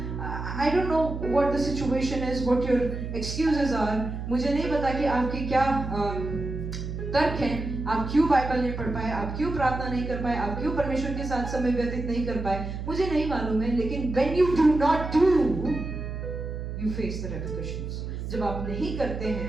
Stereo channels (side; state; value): right; noise; hum, 6 dB below the sound